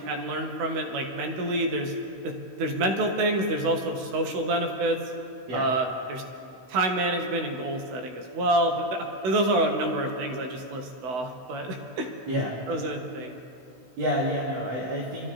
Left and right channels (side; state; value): left; late; 16 ms